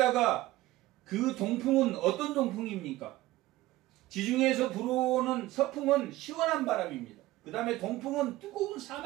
그 동풍은 어떤 동풍입니까? 지중해에서 불어오는 서풍은 시원한 바람입니다. 그 다음에 동풍은 뜨거운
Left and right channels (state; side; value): quieter; left; 17.2 dB